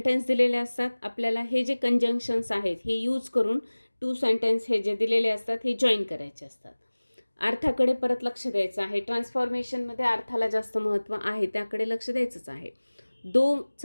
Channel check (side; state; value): both; inverted; correlation -1.00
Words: दिलेले असतात. आपल्याला हे जे कंजंक्शन्स आहेत हे यूज करून टू सेंटेन्स हे जे दिलेले असतात हे जॉईन करायचे असतात. अर्थाकडे परत लक्ष द्यायचं आहे. ट्रान्सफॉर्मेशनमध्ये अर्थाला जास्त महत्त्व आहे, त्याकडे लक्ष द्यायचंच आहे.